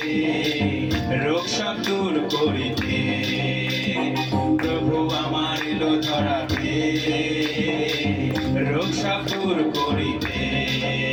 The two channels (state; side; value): identical; both; correlation 1.00